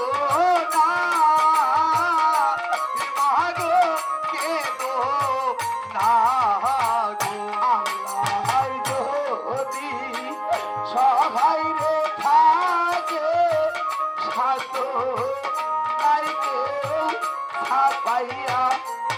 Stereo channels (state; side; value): identical; both; correlation 1.00